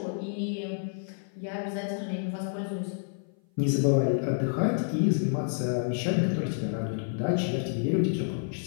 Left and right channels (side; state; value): right; silent; 55 dB below the other